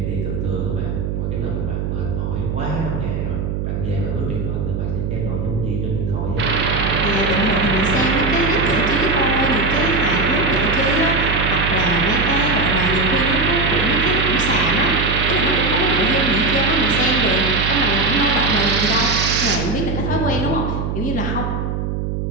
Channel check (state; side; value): noise; right; hum, 2 dB below the sound